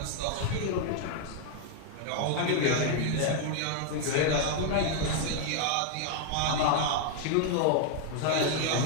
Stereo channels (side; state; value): both; different; correlation 0.00